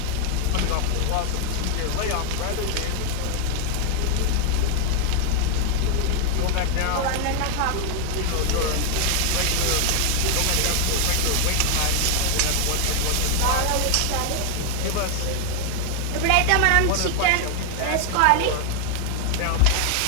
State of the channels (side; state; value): both; different; correlation 0.00